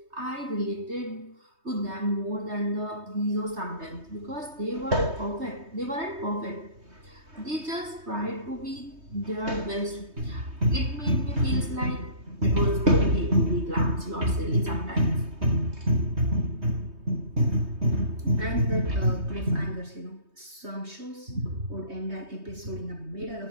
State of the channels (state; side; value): late; left; 3.2 ms